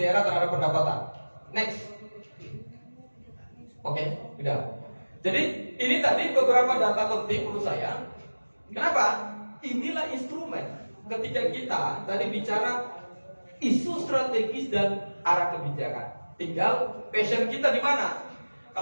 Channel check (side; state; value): both; inverted; correlation -1.00